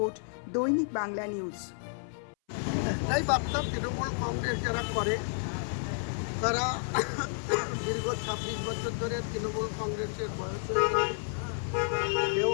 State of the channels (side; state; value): right; silent; 57 dB below the other